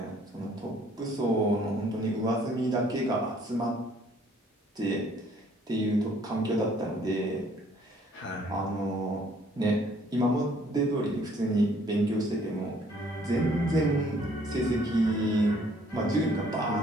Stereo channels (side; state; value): both; normal; correlation 0.61